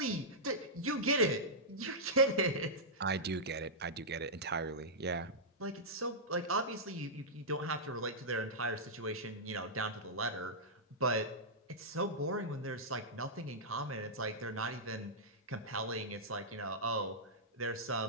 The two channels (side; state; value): both; normal; correlation -0.11